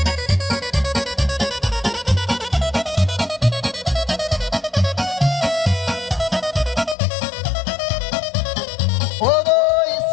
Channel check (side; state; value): right; drops out; at 7.0 s